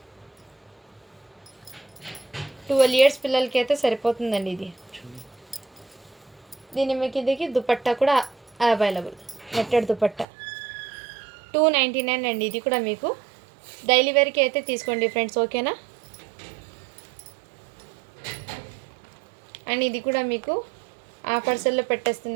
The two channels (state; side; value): drops out; left; at 10.2 s